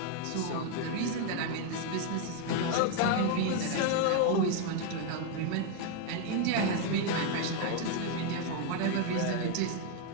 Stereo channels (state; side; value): different; both; correlation 0.01